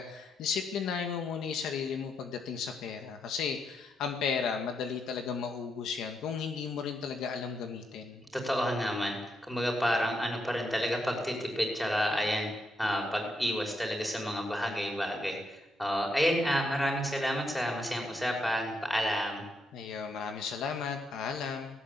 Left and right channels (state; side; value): normal; both; correlation 0.79